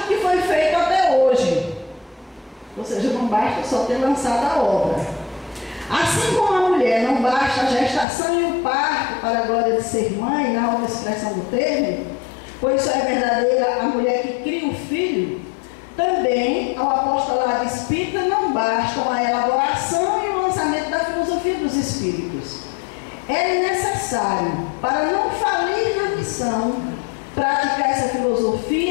que foi feito até hoje, ou seja, não basta só ter lançado a obra. Assim como a mulher não basta a gestação e o parto para a glória de ser mãe, na outra expressão do termo, pois só é verdadeira a mulher que cria o filho, também ao apostolado espírita não bastam a elaboração e o lançamento da filosofia dos espíritos. É necessário, para não falir na missão, praticar essa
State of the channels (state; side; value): drops out; right; at 8.1 s